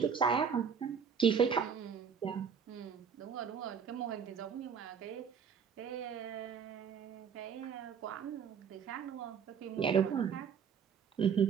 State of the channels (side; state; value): left; quieter; 7.0 dB